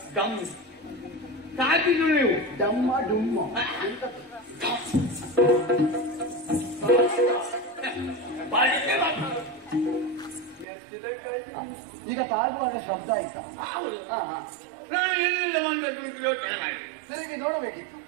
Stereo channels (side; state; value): left; drops out; at 10.7 s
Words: ದಮ್ ತಾಕಿದ್ರು ನೀವು. ದಮ್ಮ ಡುಮ್ಮ ಈಗ ತಾಗುವಾಗ ಶಬ್ದ ಆಯ್ತಾ? ನಾನು ಎಲ್ಲಿಂದ ಬಂದದ್ದು ಯೋಚನೆ ಮಾಡಿ ತಿರುಗಿ ನೋಡಬೇಕಿತ್ತು.